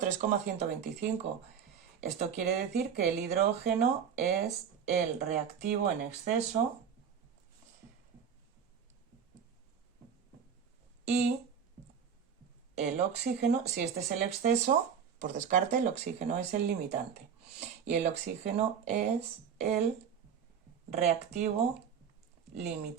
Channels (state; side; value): quieter; left; 7.4 dB